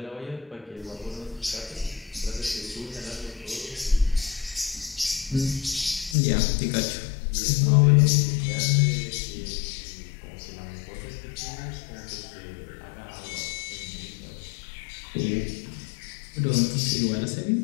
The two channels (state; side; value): drops out; right; at 6.2 s